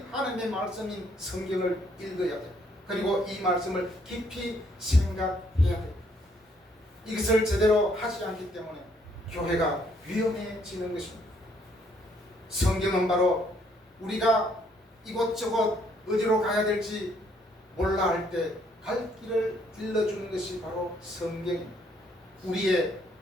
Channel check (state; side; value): normal; both; correlation 0.68